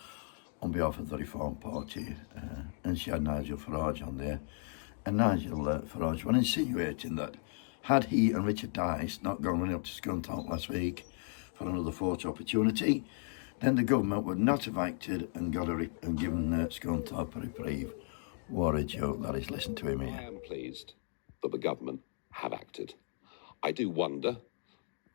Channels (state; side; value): silent; right; 54 dB below the other